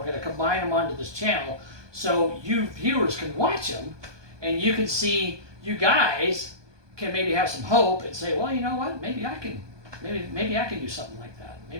going to combine them onto this channel so you viewers can watch them, and you can see, you guys can maybe have some hope and say, well, you know what, maybe I can do something like that.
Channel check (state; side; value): late; left; 1.2 ms